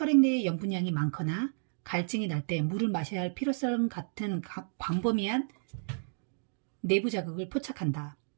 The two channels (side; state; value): left; silent; digital silence